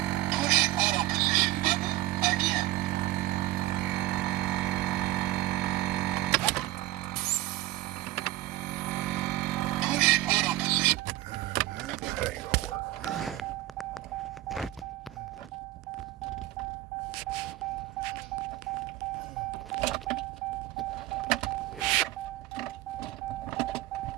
Push auto position button again.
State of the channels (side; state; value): left; quieter; 16.1 dB